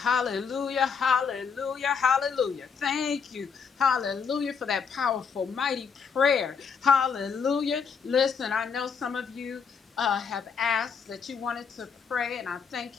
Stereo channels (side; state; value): right; quieter; 6.1 dB